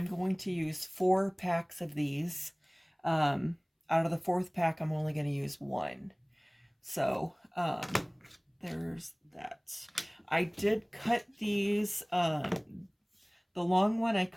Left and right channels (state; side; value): identical; both; correlation 1.00